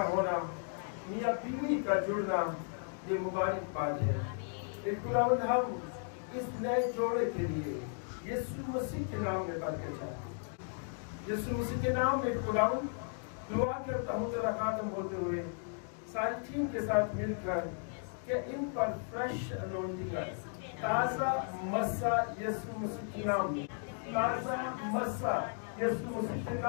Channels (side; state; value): right; silent; 54 dB below the other